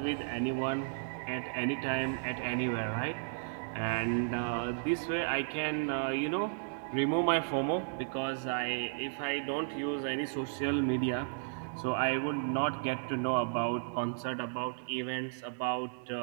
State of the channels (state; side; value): silent; left; 55 dB below the other